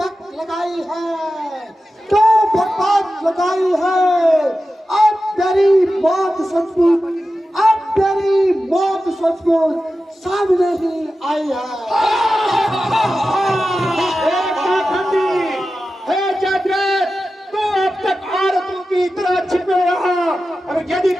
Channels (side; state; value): both; normal; correlation 0.93